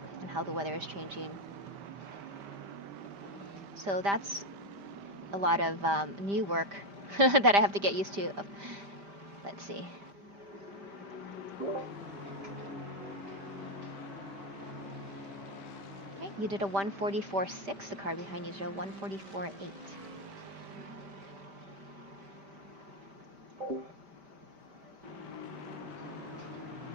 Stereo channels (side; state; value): left; late; 5.1 ms